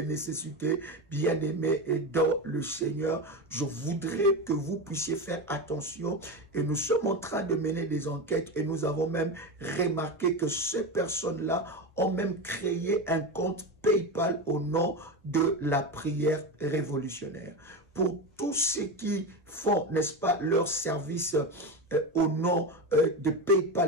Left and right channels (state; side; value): normal; both; correlation 0.19